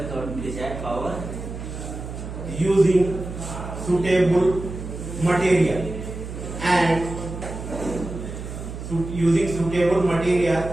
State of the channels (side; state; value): right; noise; hum, 9 dB below the sound